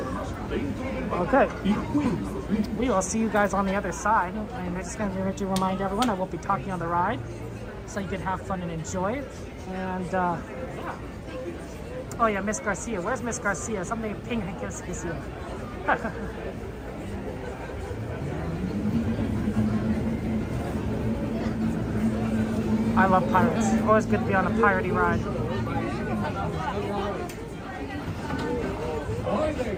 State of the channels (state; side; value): identical; both; correlation 1.00